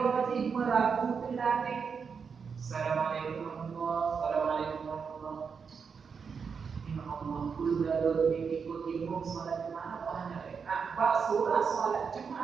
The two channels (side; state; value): left; quieter; 5.9 dB